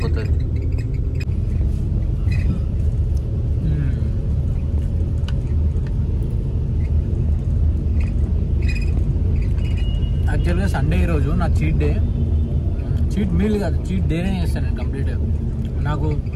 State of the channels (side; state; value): both; identical; correlation 1.00